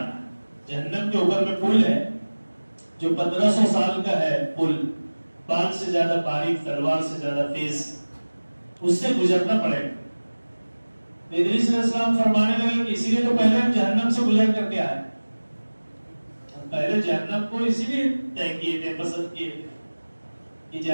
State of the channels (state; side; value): inverted; both; correlation -1.00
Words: ہے۔ جہنم کے اوپر میں پل ہے جو 1500 سال کا ہے، پل بال سے زیادہ باریک، تلوار سے زیادہ تیز، اس سے گزرنا پڑے گا۔ ادریس علیہ السلام فرمانے لگے کہ اسی لیے تو پہلے ہم جہنم سے گزر کر کے آئے، ہم پہلے جہنم کو اسی لیے طے کیے تھے، پسند کیے تھے کہ